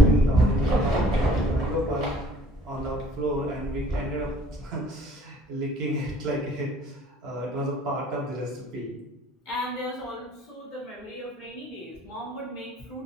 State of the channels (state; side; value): normal; both; correlation 0.56